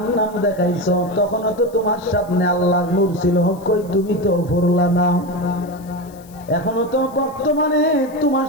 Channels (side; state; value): left; noise; hiss, 25 dB below the sound